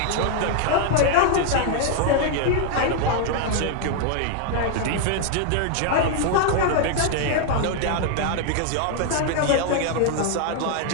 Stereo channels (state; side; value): different; both; correlation 0.00